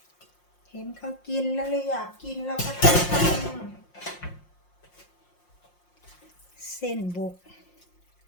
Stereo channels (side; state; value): right; late; 5.6 ms